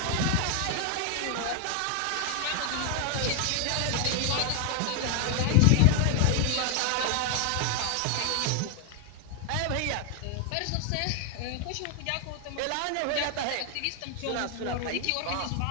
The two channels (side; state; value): both; different; correlation 0.00